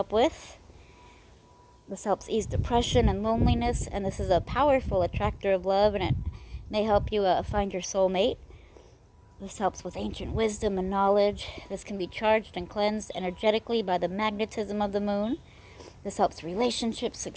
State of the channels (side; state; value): both; identical; correlation 1.00